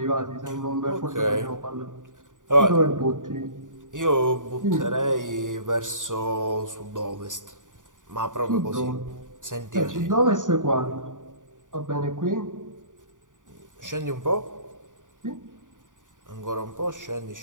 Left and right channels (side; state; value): left; late; 0.88 ms